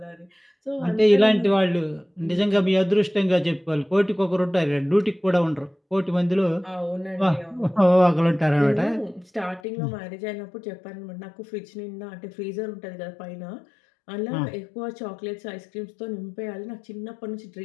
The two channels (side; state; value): right; drops out; at 9.6 s